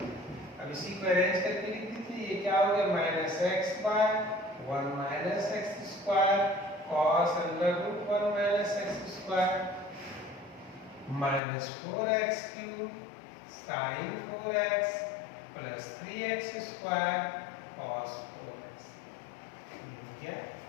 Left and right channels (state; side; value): drops out; right; at 11.4 s